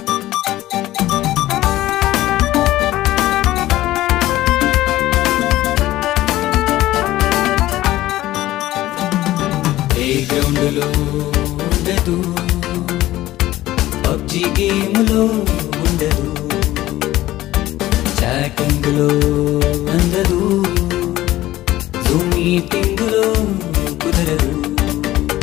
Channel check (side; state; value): right; quieter; 15.6 dB